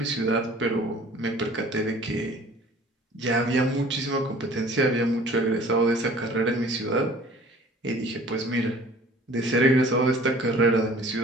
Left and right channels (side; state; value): both; normal; correlation 0.49